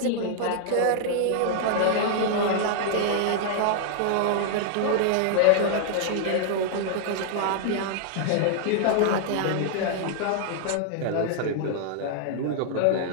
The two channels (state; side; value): different; both; correlation -0.01